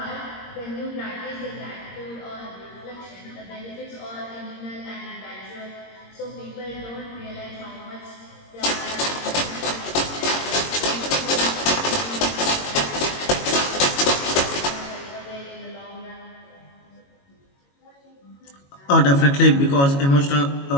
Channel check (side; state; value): right; late; 22 ms